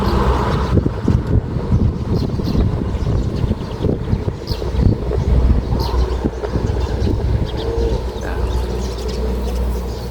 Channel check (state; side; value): identical; both; correlation 1.00